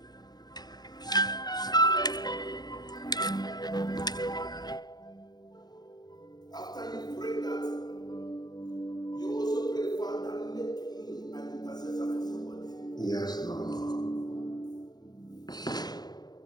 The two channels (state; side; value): late; right; 0.20 ms